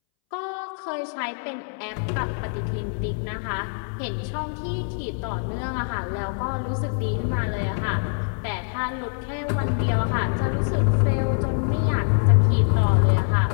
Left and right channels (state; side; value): silent; right; 62 dB below the other